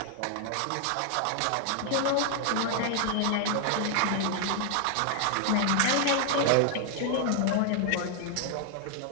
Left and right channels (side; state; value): both; different; correlation 0.00